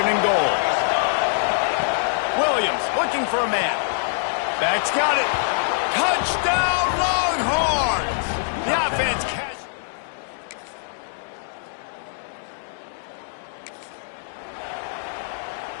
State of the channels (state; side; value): silent; right; digital silence